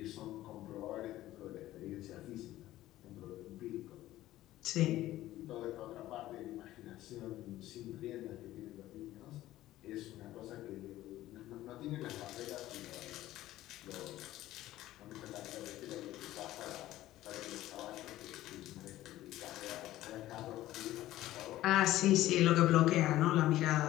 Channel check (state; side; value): quieter; right; 15.1 dB